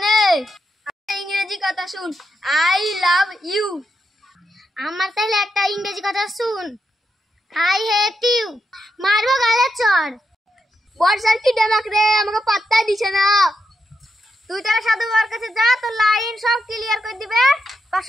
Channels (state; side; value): normal; both; correlation 0.83